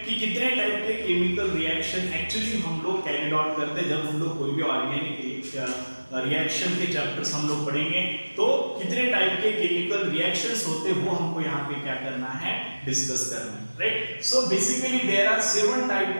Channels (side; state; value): both; inverted; correlation -1.00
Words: कि कितने type के chemical reaction actually हम लोग carry out करते हैं जब हम लोग कोई भी ऑर्गेनिक रिएक्शन के चैप्टर्स हम लोग पढ़ेंगे, तो कितने टाइप के केमिकल रिएक्शंस होते हैं वो हमको यहाँ पे क्या करना है, डिस्कस करना है, right? So basically there are 7